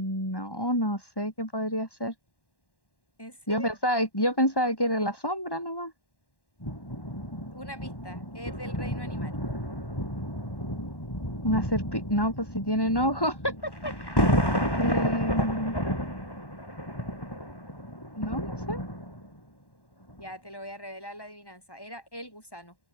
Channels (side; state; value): right; late; 1.1 ms